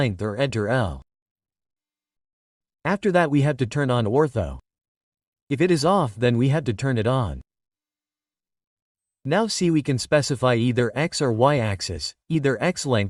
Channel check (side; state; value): both; identical; correlation 1.00